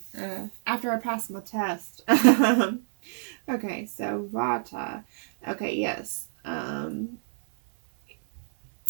after I passed my test. Okay, so Vata. Okay, yes.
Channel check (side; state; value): left; silent; 60 dB below the other